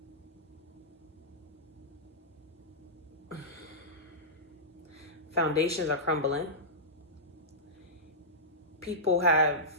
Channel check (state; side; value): normal; both; correlation -0.15